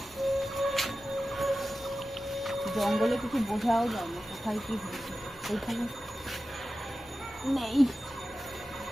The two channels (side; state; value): both; normal; correlation 0.94